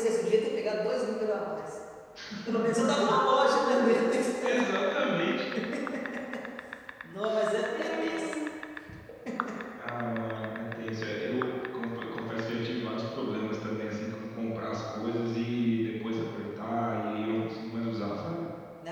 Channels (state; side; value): identical; both; correlation 1.00